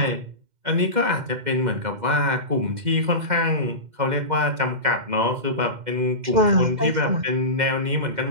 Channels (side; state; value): left; late; 2.1 ms